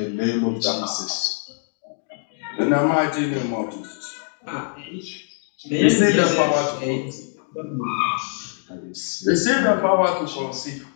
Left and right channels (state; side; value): silent; right; digital silence